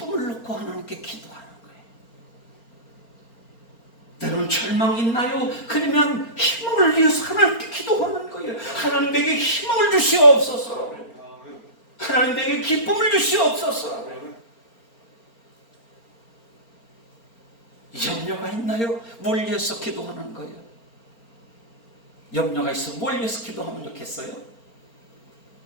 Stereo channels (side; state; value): right; late; 4.4 ms